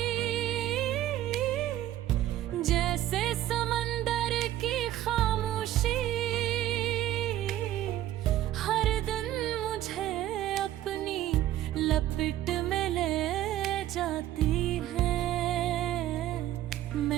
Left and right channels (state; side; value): quieter; left; 13.4 dB